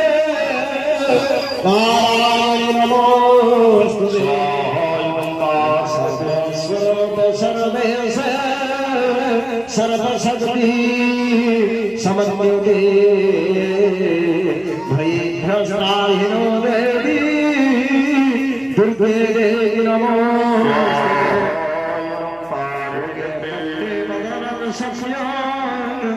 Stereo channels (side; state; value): right; noise; hum, 29 dB below the sound